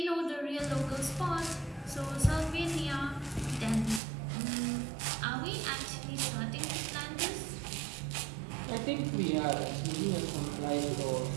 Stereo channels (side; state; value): left; drops out; at 4.0 s